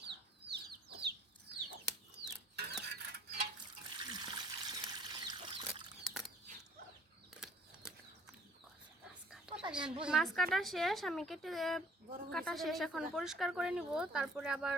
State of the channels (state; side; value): normal; both; correlation 0.56